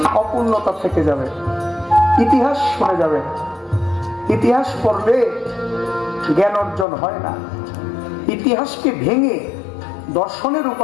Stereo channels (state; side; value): drops out; right; at 6.9 s